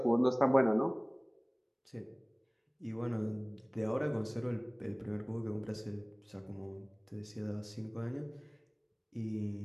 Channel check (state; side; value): identical; both; correlation 1.00